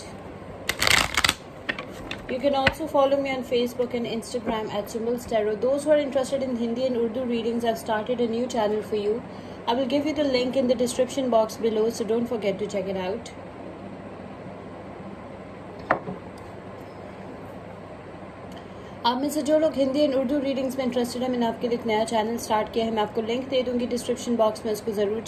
You can also follow me on Facebook and Instagram at Symbols Tarot. Those who are interested in Hindi and Urdu readings, I've started a new channel for you. I will give you the link in the description box below, so don't forget to check it out. आप में से जो लोग Hindi and Urdu readings में interested है, मैंने आपके लिए एक नया चैनल स्टार्ट किया है. मैं आपको लिंक दे दूंगी डिस्क्रिप्शन बॉक्स में, उसको ज़रूर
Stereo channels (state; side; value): identical; both; correlation 1.00